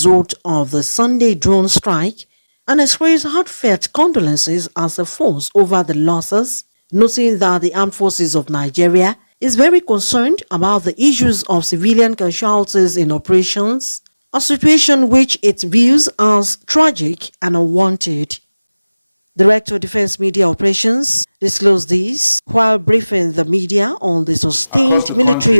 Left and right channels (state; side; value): inverted; both; correlation -1.00